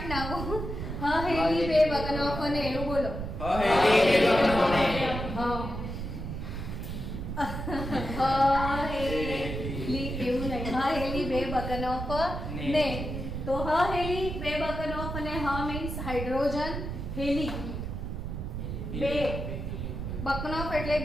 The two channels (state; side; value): noise; right; rumble, 5 dB below the sound